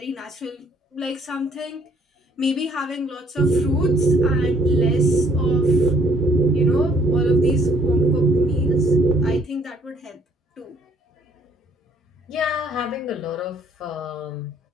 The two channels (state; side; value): normal; both; correlation 0.63